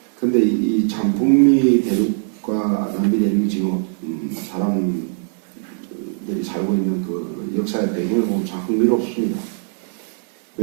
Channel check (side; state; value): left; silent; 56 dB below the other